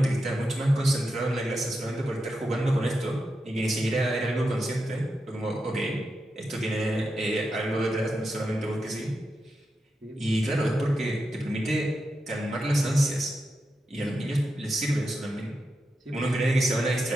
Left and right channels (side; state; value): both; normal; correlation 0.88